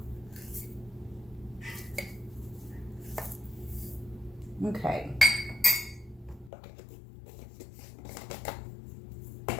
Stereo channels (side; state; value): right; drops out; at 6.5 s